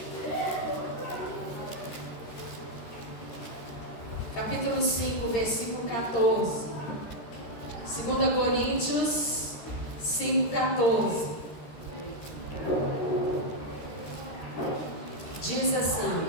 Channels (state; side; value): late; right; 13 ms